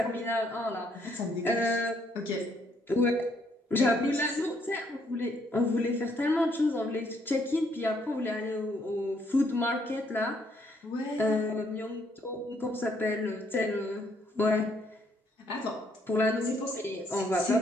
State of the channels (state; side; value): normal; both; correlation 0.70